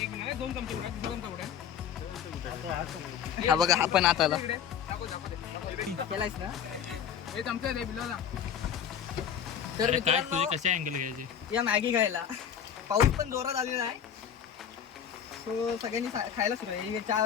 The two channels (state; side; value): quieter; right; 8.6 dB